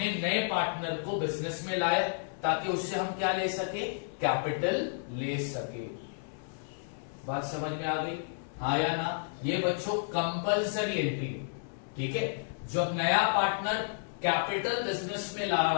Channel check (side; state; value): right; silent; 56 dB below the other